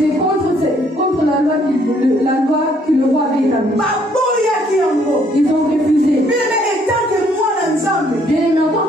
contre la loi que le roi avait établie. Ils ont refusé. Bien aimé, en tant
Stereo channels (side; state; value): both; normal; correlation 0.66